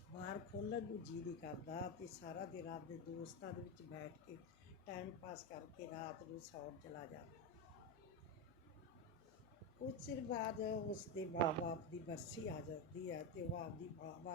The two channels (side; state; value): left; noise; hum, 28 dB below the sound